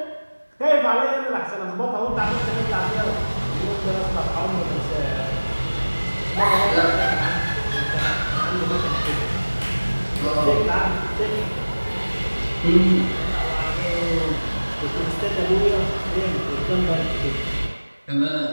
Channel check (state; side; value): inverted; both; correlation -1.00